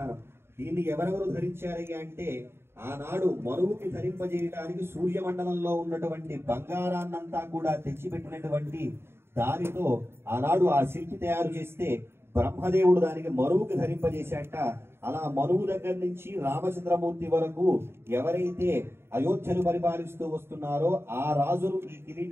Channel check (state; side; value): late; left; 0.12 ms